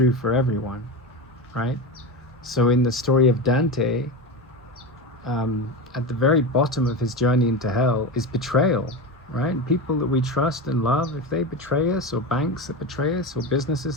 for everyone, right? So in the story of Dante, at the very bottom of his journey into hell is betrayal, right? People that we trust and love, if they betray us, or banks that betray us, or businesses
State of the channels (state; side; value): normal; both; correlation 0.21